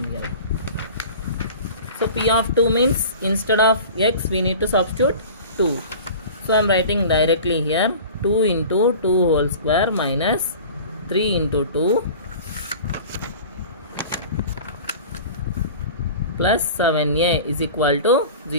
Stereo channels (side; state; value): both; inverted; correlation -0.39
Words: So p of 2 means instead of x we need to substitute 2. So I am writing directly here 2 into 2 whole square minus 3 into 2 plus 7a is equal to